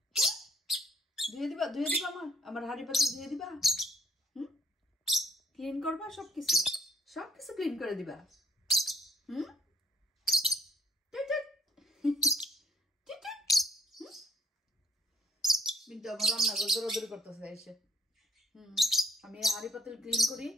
ধুয়ে দিবা? ধুয়ে দিবা আমার হাড়ি পাতিল ধুয়ে দিবা? হুম, ক্লিন করবা? সবকিছু সবকিছু ক্লিন করে দিবা? হুম, কিন্তু আমার রান্নাঘর দৌড়াদৌড়ি করতেছে এসে। আমি হাড়ি পাতিল ক্লিন করি,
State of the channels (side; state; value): both; normal; correlation 0.63